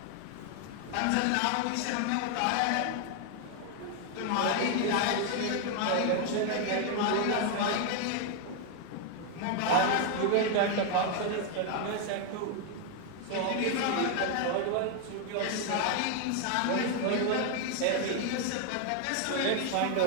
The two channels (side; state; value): both; different; correlation 0.00